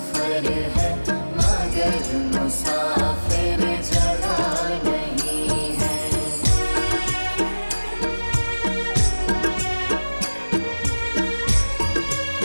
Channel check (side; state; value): both; inverted; correlation -1.00